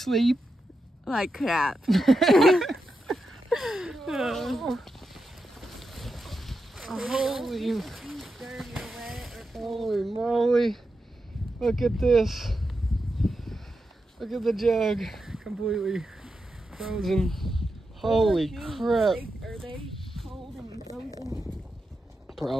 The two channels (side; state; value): both; normal; correlation 0.88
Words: Like crap. Holy moly. Look at this. Look at the jug. Completely frozen. Holy crap. Are they cold and frozen?